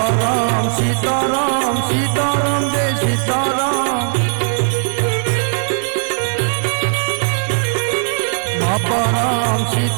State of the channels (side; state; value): left; silent; digital silence